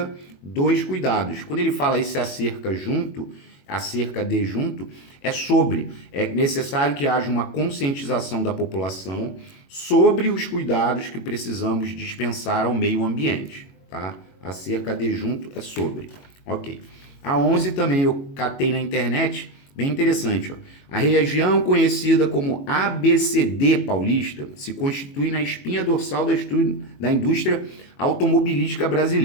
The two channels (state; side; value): late; right; 21 ms